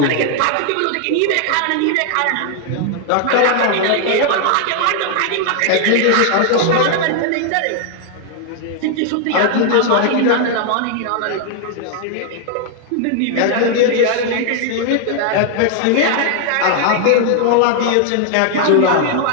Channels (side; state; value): both; different; correlation 0.00